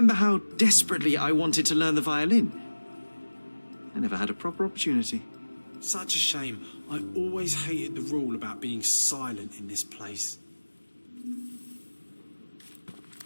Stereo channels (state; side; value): inverted; both; correlation -1.00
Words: how desperately I wanted to learn the violin? I never had a proper opportunity. Such a shame. I always hated the rule about being silent in this place.